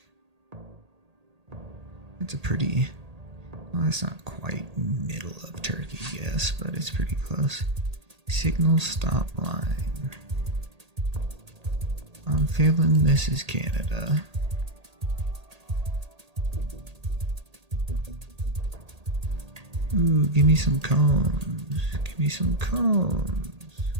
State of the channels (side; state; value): left; late; 1.8 ms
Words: It's a pretty. Well, that's not quite middle of Turkey, yes, but it's pretty close. Signal stop line. I'm feeling this is Canada. Ooh, give me some cones. Give me some cones.